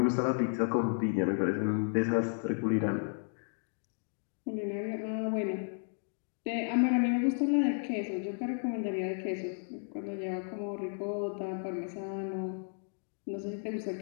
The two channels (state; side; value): silent; right; 55 dB below the other